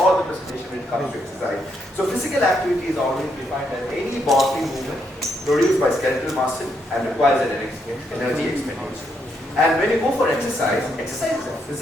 the presentation when it comes to exercise. So physical activity is always defined as any bodily movement produced by skeletal muscle and requires an energy expenditure. And when you go for exercise is a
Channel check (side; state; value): both; normal; correlation 0.77